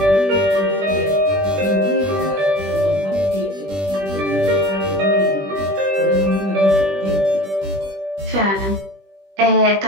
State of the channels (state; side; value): late; left; 20 ms